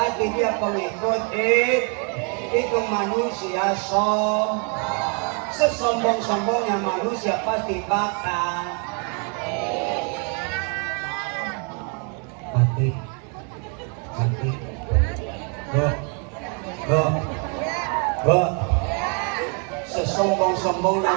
dia pengikut itu manusia sesombong-sombongnya manusia pasti bakal mati. Sesombong-sombongnya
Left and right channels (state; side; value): quieter; left; 37.7 dB